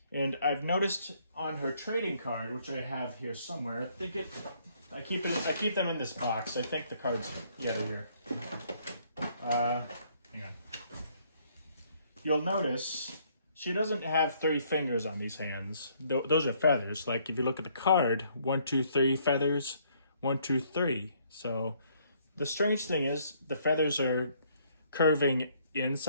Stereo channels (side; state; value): both; inverted; correlation -0.66